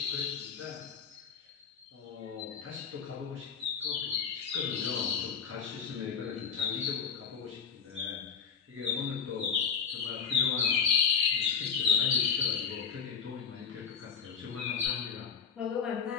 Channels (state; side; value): quieter; right; 6.7 dB